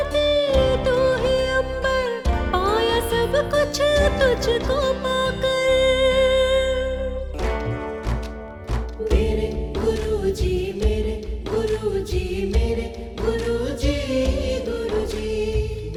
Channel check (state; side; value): identical; both; correlation 1.00